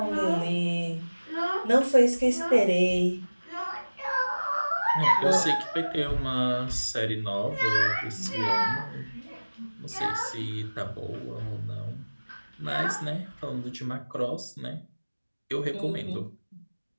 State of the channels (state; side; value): inverted; both; correlation -1.00